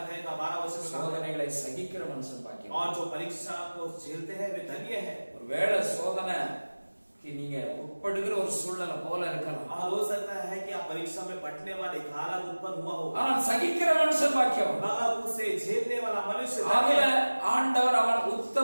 का 12 वचन में कहा, சோதனைகளை சகிக்கிற மனுஷன் பாக்கியம். और जो परीक्षा को झेलते हैं वे धन्य है। ஒருவேளை சோதனைக்கு நீங்க உட்படுகிற ஒரு சூழ்நிலை போல இருக்கலாம், और हो सकता है कि आप परीक्षा में पढ़ने वाले एक हालत उत्पन्न हुआ हो, ஆனால் சகிக்கிற மனுஷன் பாக்கியம். मगर उसे झेलने वाला मनुष्य அதுல धन्य है। ஆண்டவர் அவன்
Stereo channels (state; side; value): inverted; both; correlation -1.00